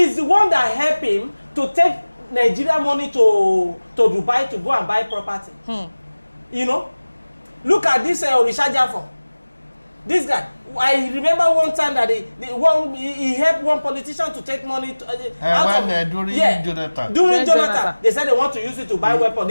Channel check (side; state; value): both; inverted; correlation -1.00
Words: the one that helped him to take Nigeria money to Dubai to go and buy property. You know, look at this Orisha Jafo. This guy, I remember one time that he helped one politician to take money during Jonathan. During Jonathan, they said they want to use it to buy weapons.